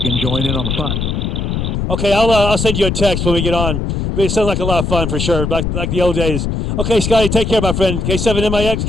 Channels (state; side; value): noise; left; rumble, 1 dB below the sound